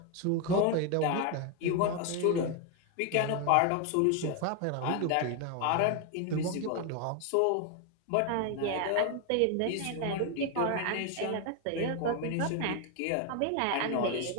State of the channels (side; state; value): both; different; correlation 0.01